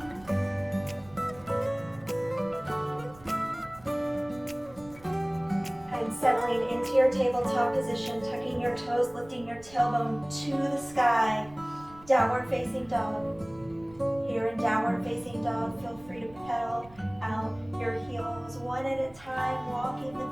And settling into your tabletop position, tucking your toes, lifting your tailbone to the sky. Downward facing dog. Here in downward facing dog, feel free to pedal out your heels one at a time, walking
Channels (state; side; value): noise; right; rumble, 23 dB below the sound